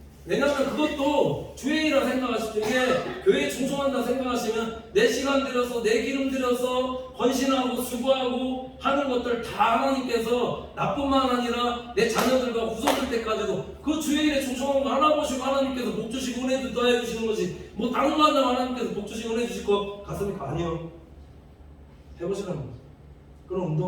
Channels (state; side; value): identical; both; correlation 1.00